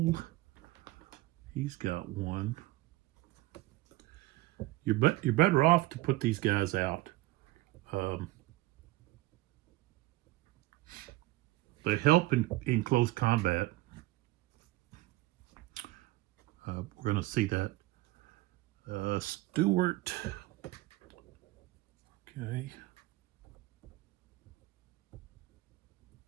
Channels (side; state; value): left; quieter; 18.9 dB